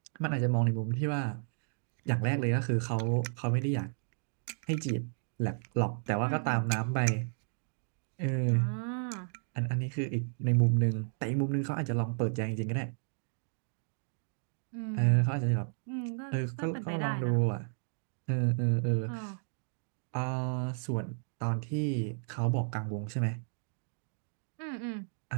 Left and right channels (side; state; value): left; silent; digital silence